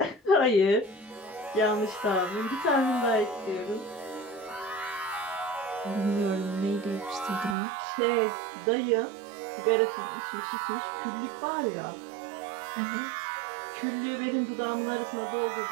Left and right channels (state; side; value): drops out; left; at 7.6 s